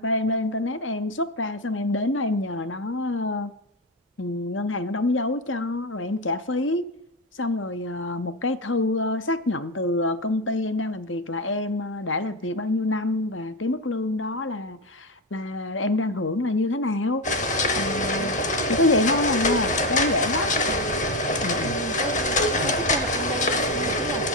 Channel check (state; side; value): normal; both; correlation 0.12